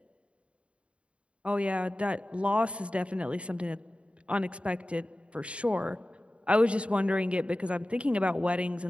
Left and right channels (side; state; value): left; late; 0.060 ms